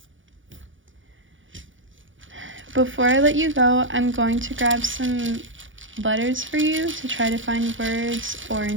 Before I let you go, I'm going to grab some letters for you to try to find words or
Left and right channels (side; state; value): left; late; 0.56 ms